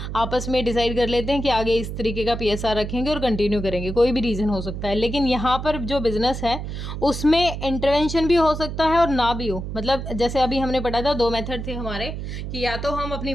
आपस में डिसाइड कर लेते हैं कि आगे इस तरीके का पीएसआर रखेंगे और कंटिन्यू करेंगे, कोई भी रीज़न हो सकता है। लेकिन यहाँ पर जो बिज़नेस है उसमें इंटरवेंशन भी हो सकता है और ना भी हो। मतलब जैसे अभी हमने पढ़ा था, दो मेथड थे हमारे कि या तो हम अपनी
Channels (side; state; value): right; noise; hum, 6 dB below the sound